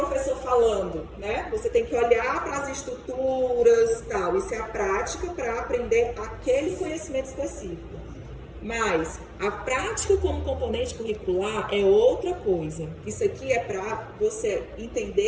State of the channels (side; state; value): both; identical; correlation 1.00